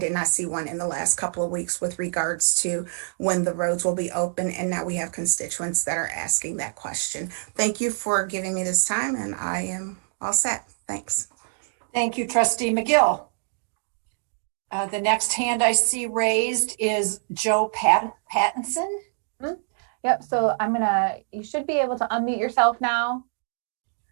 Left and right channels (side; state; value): left; silent; digital silence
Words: not see one in the last couple of weeks with regards to when the roads will be open. And now we have constituents that are asking that question. Thank you for giving me this time, and I am all set. Thanks. Thank you, Trustee McGill. The next hand I see raised is Joe Pattinson. Yep, so you should be able to unmute yourself now.